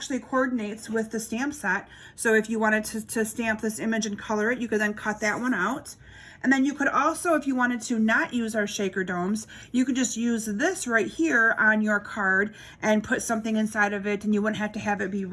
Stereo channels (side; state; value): both; identical; correlation 1.00